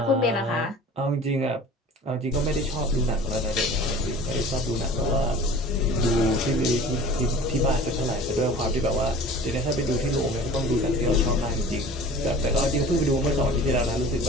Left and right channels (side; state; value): both; normal; correlation 0.42